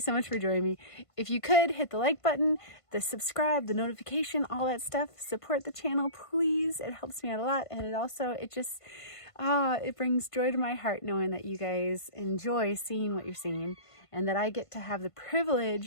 much for joining me. If you could hit the like button, the subscribe, the notification, all that stuff, support the channel, please. It helps me out a lot. And it just it brings joy to my heart knowing that you guys enjoy seeing what you're seeing and that I get to have the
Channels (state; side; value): late; right; 1.5 ms